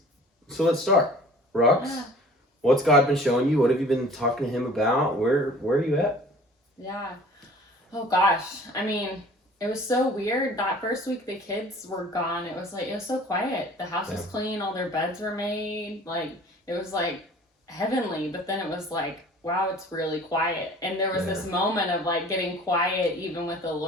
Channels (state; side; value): normal; both; correlation 0.48